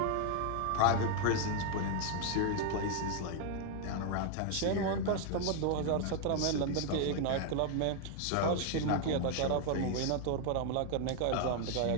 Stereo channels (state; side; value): different; both; correlation 0.00